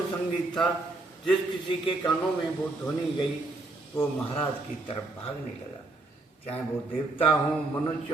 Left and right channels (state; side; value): quieter; left; 3.1 dB